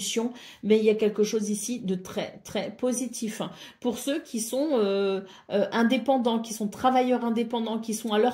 mais il y a quelque chose ici de très, très positif. Pour ceux qui sont indépendants, qui sont travailleurs indépendants, qui sont à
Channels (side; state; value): both; identical; correlation 1.00